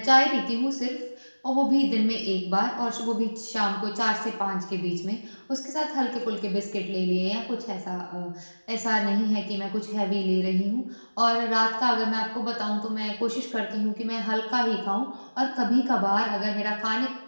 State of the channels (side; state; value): both; inverted; correlation -1.00